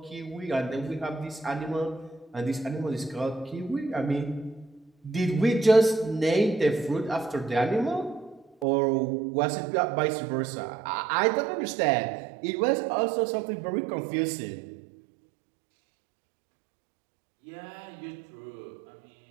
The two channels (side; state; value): left; drops out; at 8.7 s